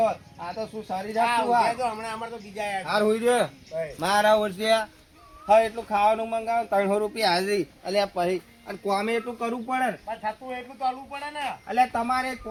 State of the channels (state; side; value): identical; both; correlation 1.00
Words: આ તો શું સારી જાત શું આ હમણાં અમારે તો બીજા આવ્યા હાર હોઈ રહ્યો છે. મારા ઓળખ્યા હા એટલું ખાવાનું મંગાવો 300 રૂપિયા હાજરી અલ્યા પછી અને કોમે એટલું કરવું પડે ને પણ થતું એટલું તો આલવું પડે ને. અલ્યા તમારે